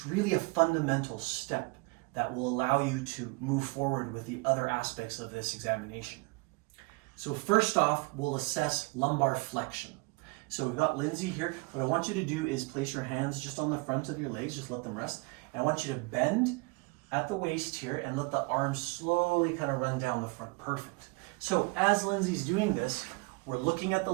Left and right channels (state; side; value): quieter; left; 28.0 dB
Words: really a fundamental step that will allow you to move forward with the other aspects of this examination. So first off, we'll assess lumbar flexion. So we've got Lindsay here. What I want you to do is place your hands just on the front of your legs, just let them rest. And I want you to bend at the waist here and let the arms slowly kind of run down the front. Perfect. So as Lindsay's doing this, we're looking at the